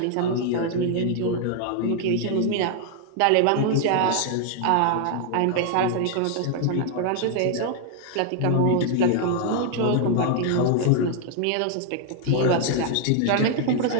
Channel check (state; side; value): different; both; correlation 0.00